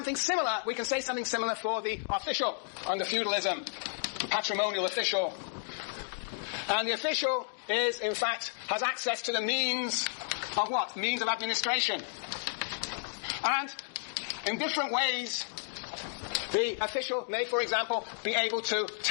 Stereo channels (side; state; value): right; silent; digital silence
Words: similar. We can say something similar for the official under feudalism. The patrimonial official. And the official is, in fact, has access to the means of what? Means of administration. And in different ways, the official may, for example, be able to